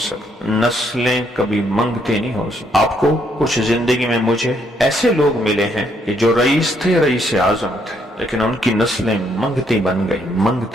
نسلیں کبھی منگتی نہیں ہو سکتی۔ آپ کو کچھ زندگی میں مجھے ایسے لوگ ملے ہیں کہ جو رئیس تھے، رئیس اعظم تھے، لیکن ان کی نسلیں منگتی بن گئی،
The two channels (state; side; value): normal; both; correlation 0.72